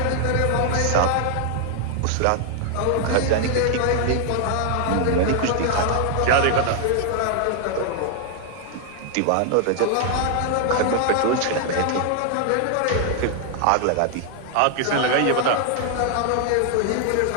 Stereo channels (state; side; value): different; both; correlation 0.00